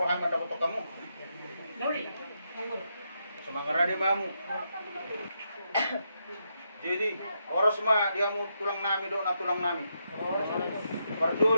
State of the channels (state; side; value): inverted; both; correlation -0.81